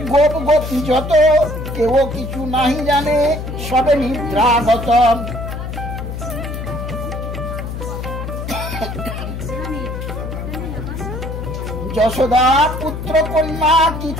গোপ গোপী যত, কেউ কিছু নাহি জানে সবে নিদ্রাগত। যশোদা পুত্র কন্যা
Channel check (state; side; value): noise; left; hum, 6 dB below the sound